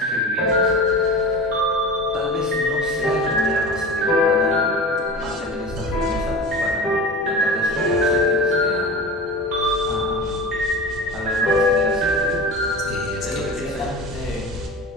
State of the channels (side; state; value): both; normal; correlation 0.32